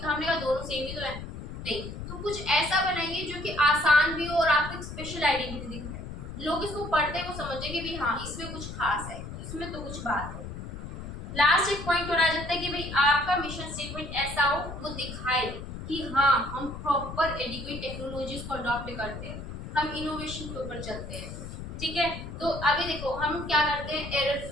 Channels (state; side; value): noise; left; rumble, 9 dB below the sound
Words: हमने कहा दोनों सेम ही तो है, नहीं, तो कुछ ऐसा बनाइए जो कि आसान भी हो और आपको एक स्पेशल आइडेंटिटी दिखाए, लोग इसको पढ़ते हैं वो समझे कि भाई हाँ इसमें कुछ खास है, इसमें तो कुछ बात है। लास्ट एक पॉइंट और आ जाता है कि भाई आपका मिशन स्टेटमेंट ऐसा हो, वो दिखाए कि हाँ हम प्रॉपर एडिक्वेट टेक्नोलॉजीज को अडॉप्ट करते हैं, हम इनोवेशन के ऊपर चलते हैं, ठीक है। तो अभी देखो हम क्या करते हैं, एरर